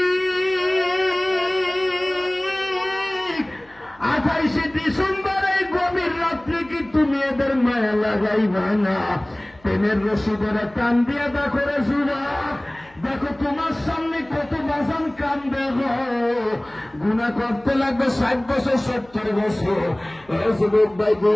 28 ডিসেম্বর এই গভীর রাত্রে কি তুমি এদের মায়া লাগাইবা না? প্রেমের রশিদের টান দিয়ে দেখো রে যুবক, দেখো তোমার সামনে কত বাজান কান্দে গো। গুনাহ করতে লাগবে 60 বছর 70 বছর। এই যুবক ভাই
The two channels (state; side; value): noise; left; hum, 28 dB below the sound